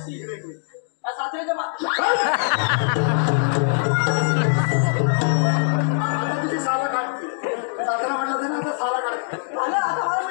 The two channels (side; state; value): right; silent; digital silence